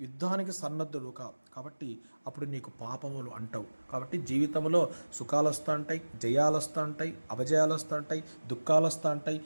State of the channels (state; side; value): inverted; both; correlation -1.00